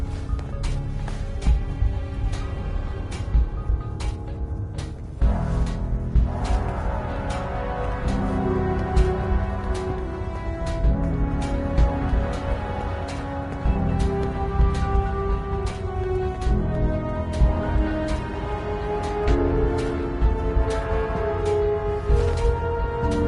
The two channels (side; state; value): both; identical; correlation 1.00